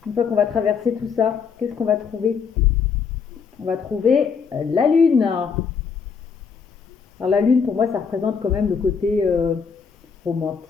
fois qu'on va traverser tout ça, qu'est-ce qu'on va trouver? On va trouver la lune. Alors, la lune, pour moi, ça représente quand même le côté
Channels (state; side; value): quieter; right; 6.0 dB